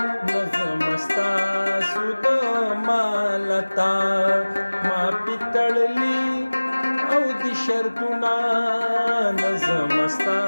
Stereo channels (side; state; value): both; inverted; correlation -1.00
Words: نظم ستاسو د مالتا ما پیتړلی او د شرطونه نظم